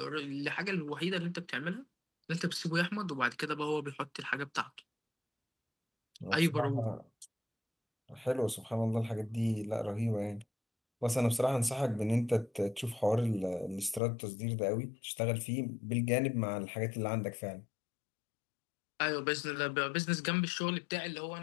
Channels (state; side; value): drops out; right; at 14.0 s